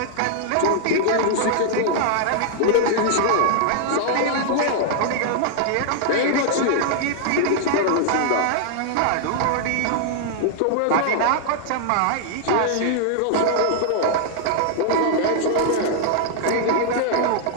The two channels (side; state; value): both; different; correlation 0.00